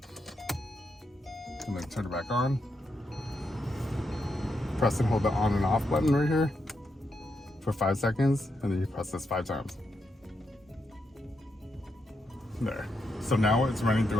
and then turn it back on. Press and hold the on and off button right here for 5 seconds, and then you press this 5 times. There. So now it's running through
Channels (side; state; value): both; normal; correlation 0.82